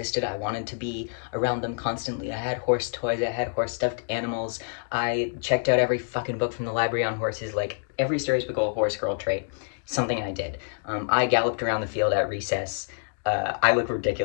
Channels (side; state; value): right; silent; digital silence